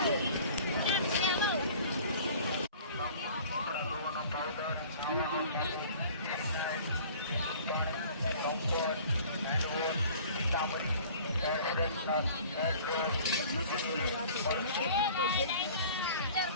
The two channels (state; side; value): inverted; both; correlation -0.47